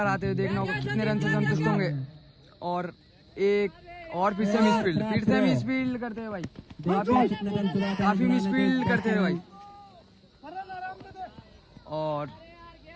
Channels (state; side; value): identical; both; correlation 1.00